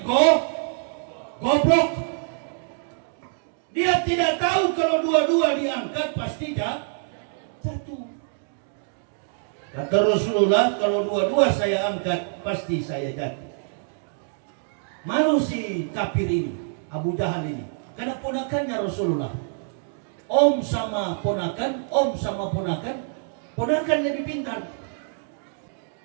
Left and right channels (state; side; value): silent; left; digital silence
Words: goblok. Dia tidak tahu kalau dua-dua diangkat pasti jatuh. Kata Rasulullah, kalau dua-dua saya angkat pasti saya jatuh. Malu si kafir ini, Abu Jahal ini, karena ponakannya Rasulullah. Om sama ponakan, ponakan lebih pintar.